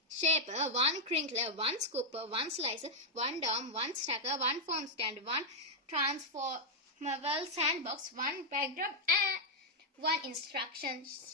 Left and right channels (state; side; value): normal; both; correlation -0.03